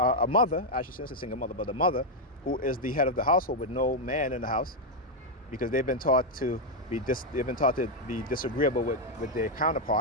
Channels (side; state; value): both; normal; correlation 0.01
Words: mother, I shouldn't say single mother, but a mother who is the head of the household with no man in the house, because they've been taught to be disagreeable with their